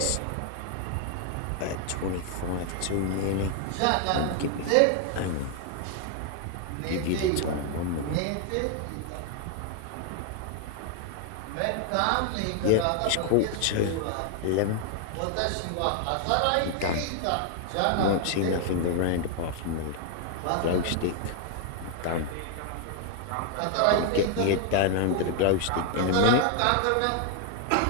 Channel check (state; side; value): different; both; correlation 0.00